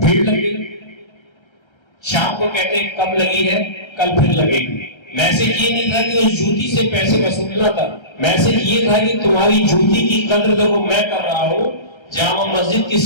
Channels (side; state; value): right; late; 1.3 ms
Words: लगी। शाम को कहते कब लगी है, कल फिर लगेगी। मैसेज ये नहीं था कि उस जूती से पैसे वसूलना था, मैसेज ये था कि तुम्हारी जूती की कद्र देखो मैं कर रहा हूं, जामा मस्जिद की